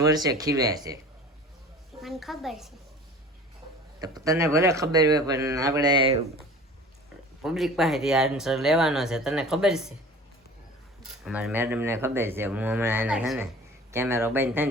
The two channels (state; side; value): normal; both; correlation 0.42